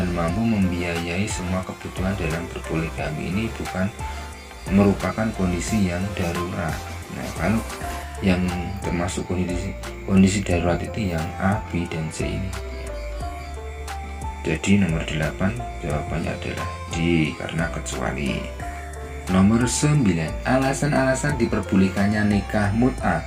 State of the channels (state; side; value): identical; both; correlation 1.00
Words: mampu membiayai semua kebutuhan dalam berpoligami. Ini bukan merupakan kondisi yang darurat. Nah, kalau yang termasuk kondisi darurat itu yang A, B, dan C ini. Jadi nomor 8 jawabannya adalah D karena kecuali. Nomor 9, alasan-alasan diperbolehkannya nikah mut'ah